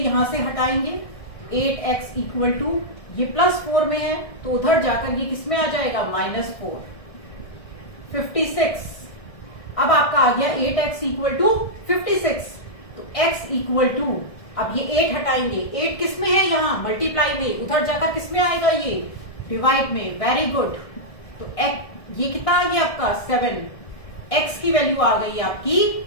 से हटाएंगे। 8x इक्वल टू, ये +4 में है तो उधर जाकर ये किसमें आ जाएगा? -4। 56। अब आपका आ गया 8x इक्वल टू 56, तो x इक्वल टू, अब ये 8 हटाएंगे। 8 किसमें है? यहाँ मल्टीप्लाई में, उधर जाकर किसमें आएगा? ये डिवाइड में। Very good. तो x ये कितना आ गया आपका? 7। x की वैल्यू आ गई आपकी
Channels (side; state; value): right; late; 1.6 ms